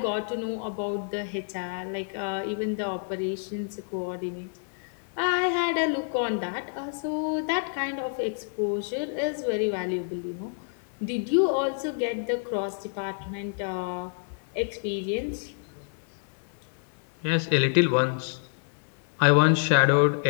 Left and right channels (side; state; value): right; silent; digital silence